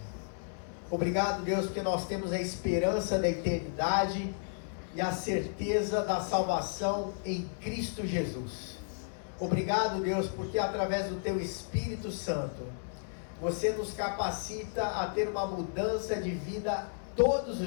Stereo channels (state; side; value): silent; right; digital silence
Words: Obrigado, Deus, porque nós temos a esperança da eternidade e a certeza da salvação em Cristo Jesus. Obrigado, Deus, porque através do Teu Espírito Santo, Você nos capacita a ter uma mudança de vida todos